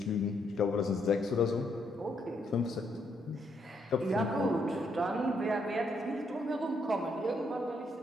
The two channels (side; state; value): both; normal; correlation 0.75